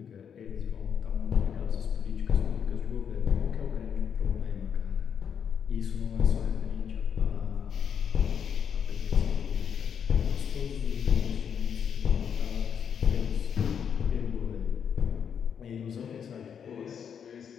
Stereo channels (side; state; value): right; quieter; 7.7 dB